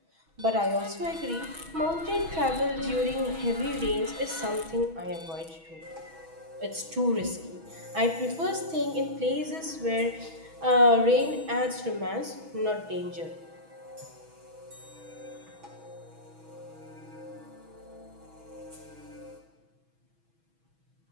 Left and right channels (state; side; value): late; left; 6.2 ms